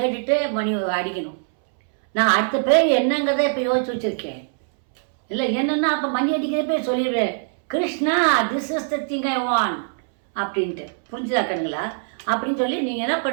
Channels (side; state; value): left; silent; 64 dB below the other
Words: மணி அடிக்கணும். நான் அடுத்த பேர் என்னங்கிறத இப்போ யோசிச்சு வச்சுருக்கேன். இல்லை என்னென்னா அப்போ மணி அடிக்கிறப்பே சொல்லிடுவேன், Krishna this is the thing I want அப்படின்ட்டு. புரிஞ்சுதாக்கணுங்களா? அப்படின்னு சொல்லி நீங்கள் என்ன